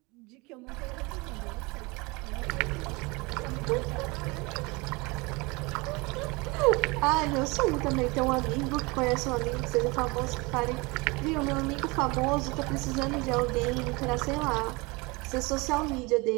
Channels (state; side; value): quieter; left; 25.8 dB